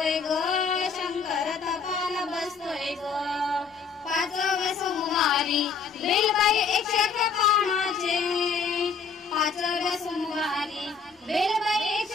ग, शंकर तपाल बसतोय ग. पाचव्या सोमवारी बेलबाई 111 पानाचे, पाचव्या सोमवारी बेलबाई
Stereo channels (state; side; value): quieter; right; 5.4 dB